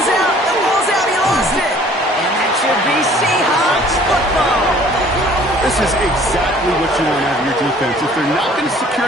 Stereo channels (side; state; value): both; normal; correlation 0.54